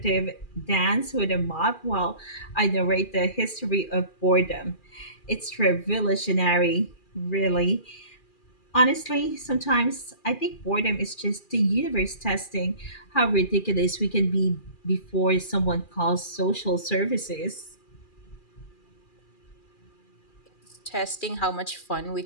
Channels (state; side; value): late; right; 2.4 ms